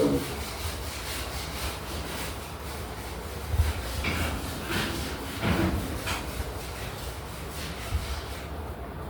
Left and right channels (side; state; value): both; identical; correlation 1.00